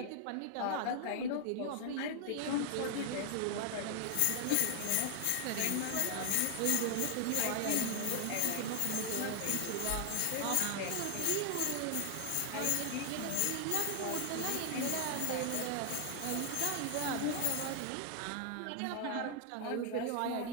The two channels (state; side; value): different; both; correlation 0.00